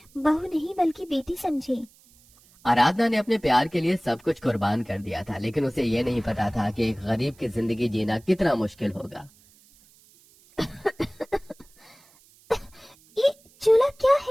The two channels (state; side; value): noise; right; hiss, 29 dB below the sound